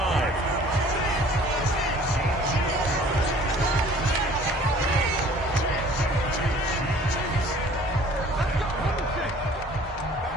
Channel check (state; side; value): normal; both; correlation 0.51